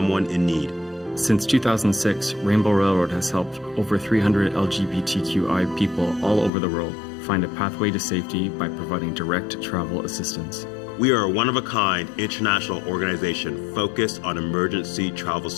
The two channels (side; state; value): right; drops out; at 6.5 s